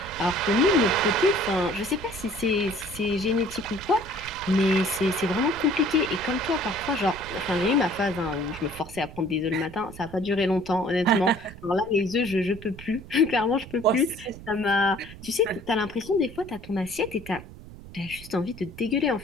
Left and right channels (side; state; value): right; noise; rumble, 16 dB below the sound